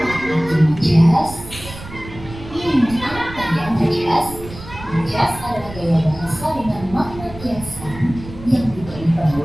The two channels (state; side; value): noise; right; rumble, 15 dB below the sound